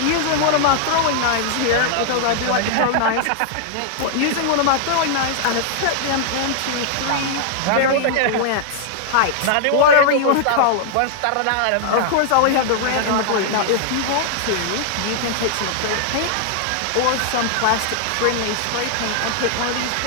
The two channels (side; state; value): both; different; correlation -0.01